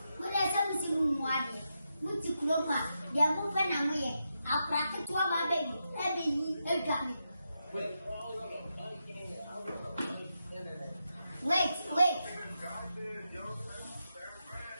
but there's something more. Which you close, they are moving away. I'll crack it to our baby. Wait.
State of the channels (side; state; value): both; inverted; correlation -0.86